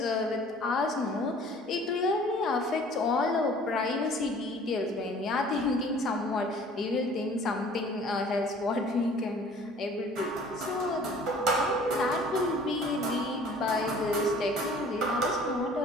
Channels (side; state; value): both; normal; correlation 0.51